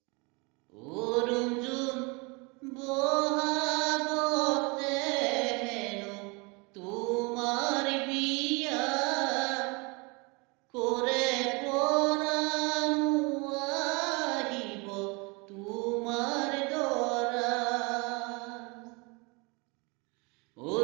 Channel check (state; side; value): quieter; left; 29.0 dB